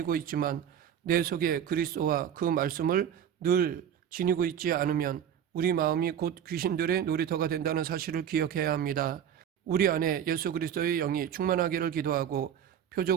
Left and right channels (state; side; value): quieter; left; 9.2 dB